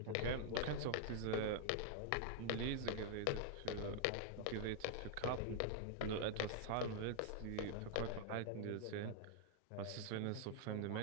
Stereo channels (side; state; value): both; different; correlation 0.00